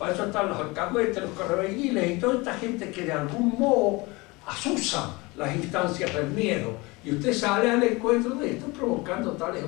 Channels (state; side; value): quieter; right; 24.3 dB